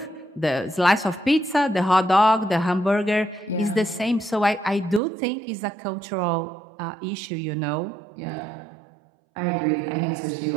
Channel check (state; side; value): drops out; left; at 5.0 s